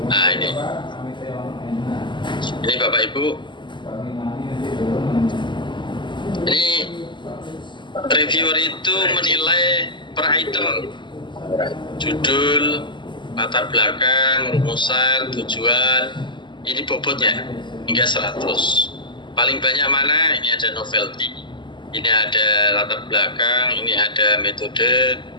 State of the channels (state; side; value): late; right; 0.23 ms